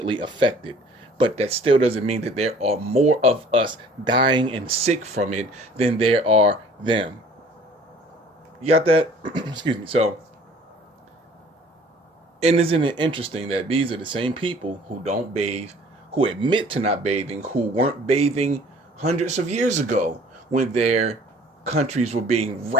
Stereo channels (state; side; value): normal; both; correlation 0.52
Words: affected. But that still doesn't mean that there are more of us dying and sick from it than there are them. You got that? Excuse me. So, and isn't it interesting that these are the same people who don't bathe, who admit to not bathing, who weren't bathing hundreds of years ago when their countries were being